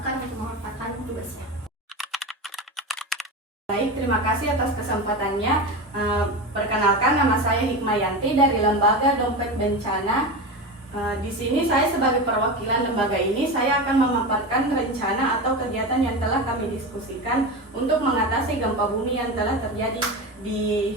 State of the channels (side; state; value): both; normal; correlation 0.23